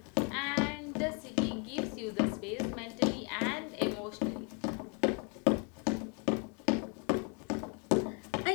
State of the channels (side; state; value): right; quieter; 36.2 dB